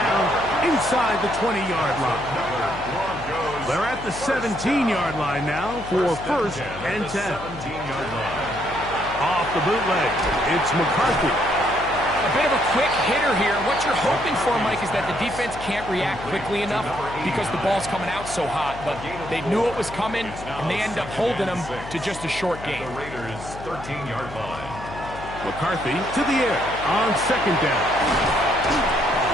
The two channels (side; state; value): left; noise; hum, 13 dB below the sound